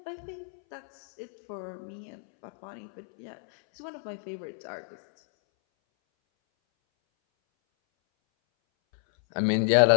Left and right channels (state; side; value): silent; right; 58 dB below the other